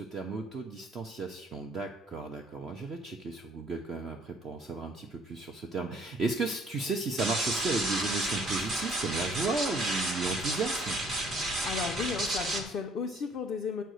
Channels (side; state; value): both; normal; correlation 0.60